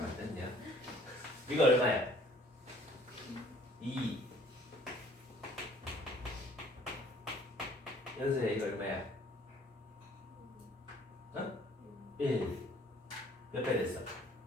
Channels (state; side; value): normal; both; correlation 0.56